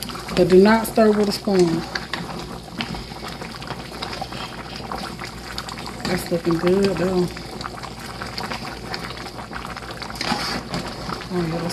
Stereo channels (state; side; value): identical; both; correlation 1.00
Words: but do not stir with a spoon. That's looking good though. Oh yeah,